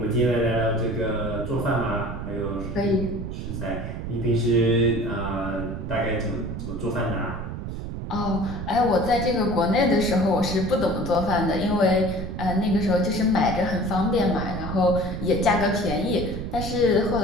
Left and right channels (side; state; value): right; noise; rumble, 6 dB below the sound